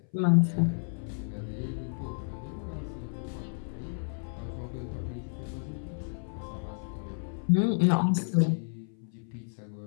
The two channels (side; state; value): right; silent; 57 dB below the other